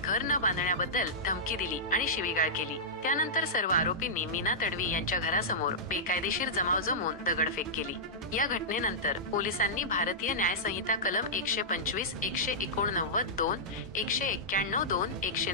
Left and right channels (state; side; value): normal; both; correlation -0.13